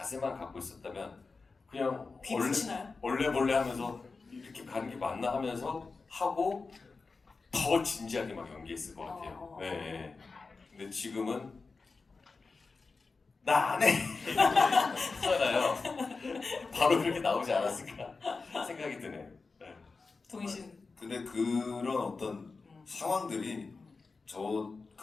갖고 있었다면 그냥 귀 붙이나요? 원래 하면서 이렇게 가는 게 맞나 하면서 하고 더 진지하게 막 연기했을 것 같아요. 네. 근데 지금은 나 안 해! 하잖아요. 바로 그렇게 나오지 않았을까 생각이 드네요. 동희 씨는? 근데 그런 어떤 상황들이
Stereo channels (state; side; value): quieter; right; 4.2 dB